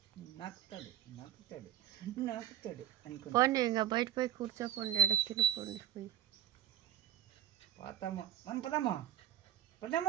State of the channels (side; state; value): left; quieter; 10.8 dB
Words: నాకుతాడు అనుకో పోండి ఇంకా బయట పోయి కూర్చోపోండి ఎడ తినిపోండి పోయి పోతాము మనం పదాము